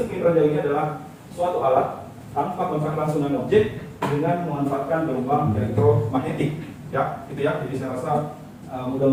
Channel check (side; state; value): both; identical; correlation 1.00